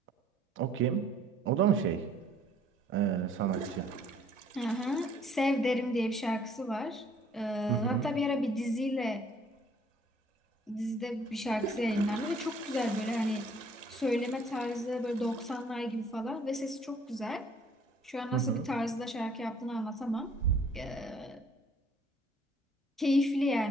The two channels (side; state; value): both; normal; correlation 0.59